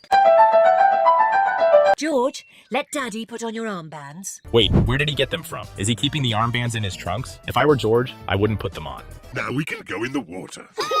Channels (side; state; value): both; identical; correlation 1.00